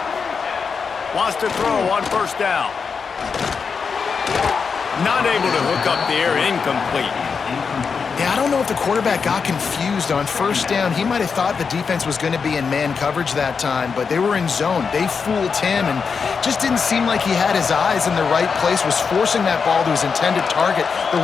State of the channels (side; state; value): right; quieter; 5.6 dB